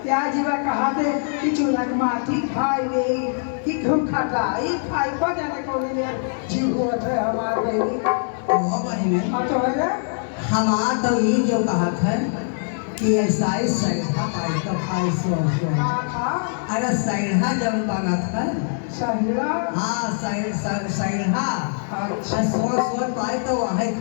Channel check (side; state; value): right; silent; 64 dB below the other